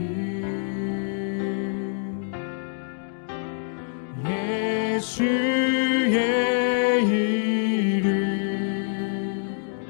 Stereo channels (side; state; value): right; silent; digital silence